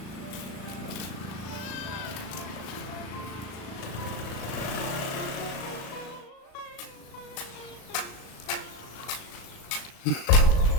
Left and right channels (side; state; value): right; late; 37 ms